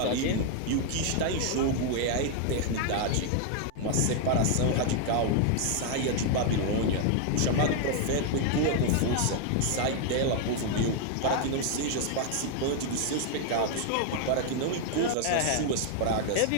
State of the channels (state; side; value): different; both; correlation 0.00